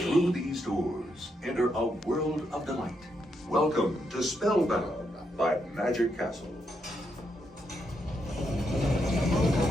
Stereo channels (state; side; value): normal; both; correlation 0.80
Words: Through these doors, enter a world of delight. Welcome to Spellbound by Magic Castle.